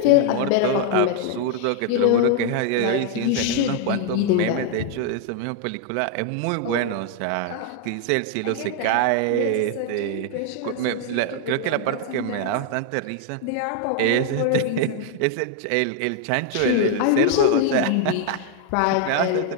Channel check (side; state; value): both; different; correlation 0.00